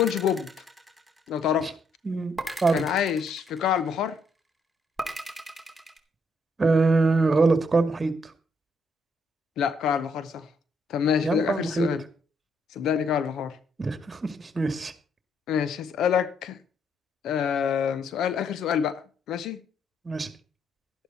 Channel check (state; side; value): normal; both; correlation 0.72